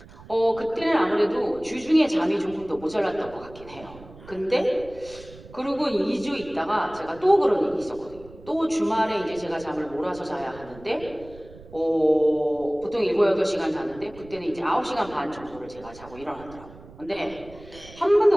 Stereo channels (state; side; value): noise; right; rumble, 20 dB below the sound